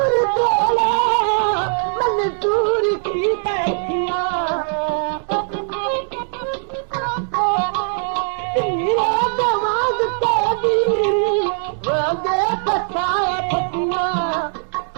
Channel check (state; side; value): silent; left; 62 dB below the other